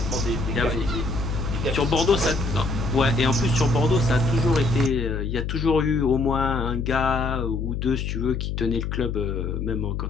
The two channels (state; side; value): noise; left; hum, 3 dB below the sound